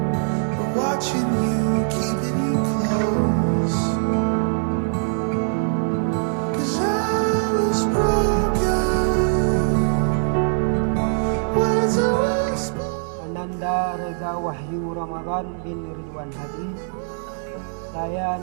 are watching you, keeping you close. 'Cause I was broken, words are whispered. Ananda Reza Wahyu Ramadan bin Ridwan Hadi. Saya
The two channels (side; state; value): left; silent; digital silence